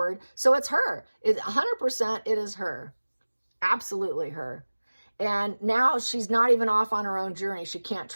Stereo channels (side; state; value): both; inverted; correlation -1.00